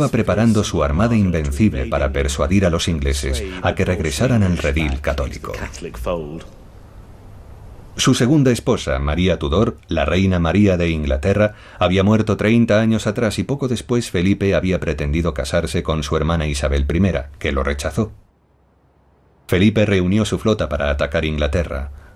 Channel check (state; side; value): identical; both; correlation 1.00